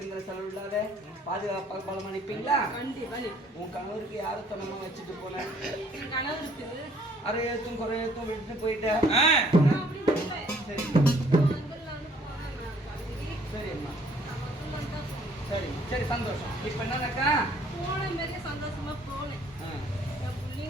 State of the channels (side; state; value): both; normal; correlation 0.60